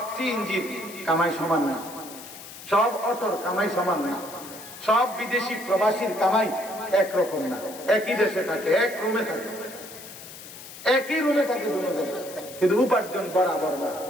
সিএনজির কামাই সমান না, সব অটোর কামাই সমান না, সব বিদেশি প্রবাসীর কামাই একরকম না। একই দেশে থাকে, এক রুমে থাকে, একই রুমে থাকে দুজন, কিন্তু উপার্জন বরাবর না।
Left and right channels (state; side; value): noise; left; hiss, 15 dB below the sound